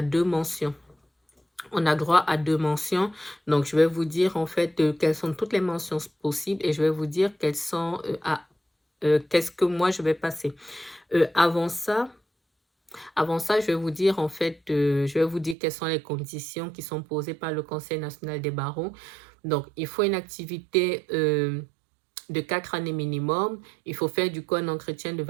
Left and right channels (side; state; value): left; drops out; at 15.6 s